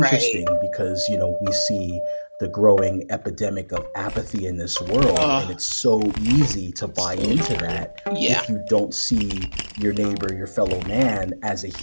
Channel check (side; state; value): both; inverted; correlation -1.00